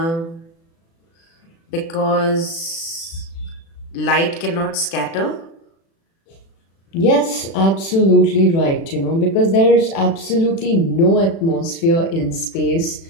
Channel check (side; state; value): right; late; 36 ms